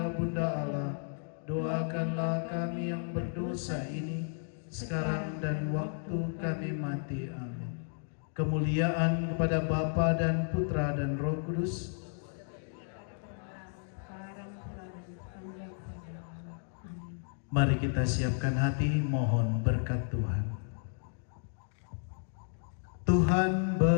Bunda Allah, doakanlah kami yang berdosa ini, sekarang dan waktu kami mati. Amin. Kemuliaan kepada Bapa dan Putra dan Roh Kudus. Mari kita siapkan hati, mohon berkat Tuhan. Tuhan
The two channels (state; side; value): silent; right; digital silence